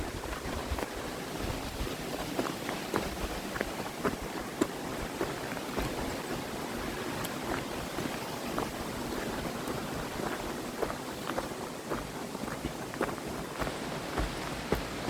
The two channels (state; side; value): identical; both; correlation 1.00